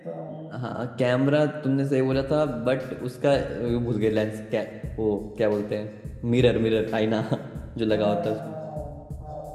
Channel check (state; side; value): identical; both; correlation 1.00